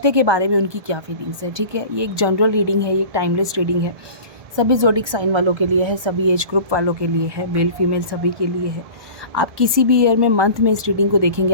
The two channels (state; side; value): late; left; 1.2 ms